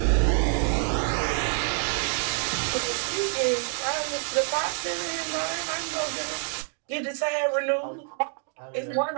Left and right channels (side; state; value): left; silent; 55 dB below the other